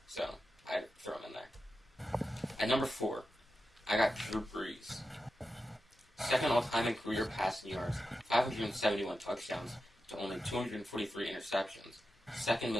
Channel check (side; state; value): both; normal; correlation 0.91